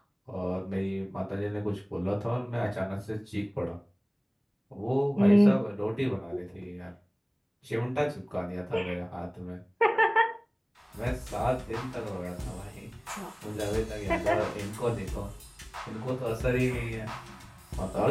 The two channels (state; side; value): identical; both; correlation 1.00